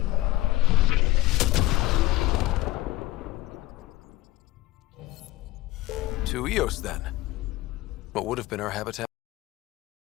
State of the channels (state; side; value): quieter; right; 17.3 dB